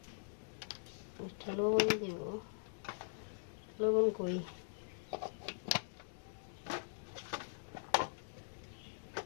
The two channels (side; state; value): right; silent; digital silence